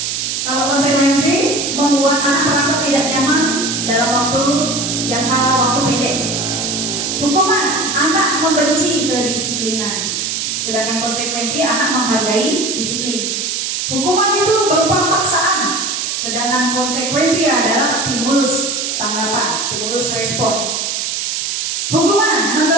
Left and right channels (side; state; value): right; noise; hiss, 2 dB below the sound